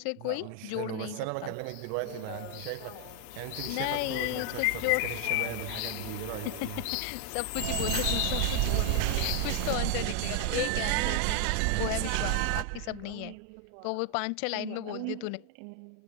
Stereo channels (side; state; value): both; different; correlation 0.00